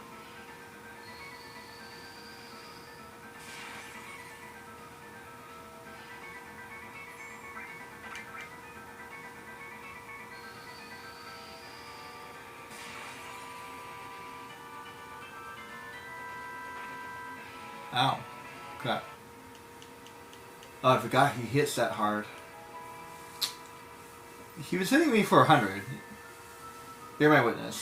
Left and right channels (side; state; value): both; identical; correlation 1.00